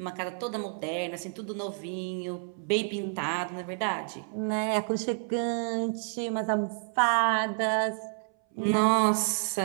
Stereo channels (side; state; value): left; silent; 58 dB below the other